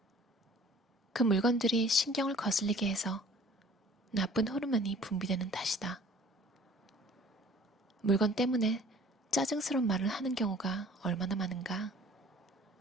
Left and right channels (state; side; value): normal; both; correlation 0.50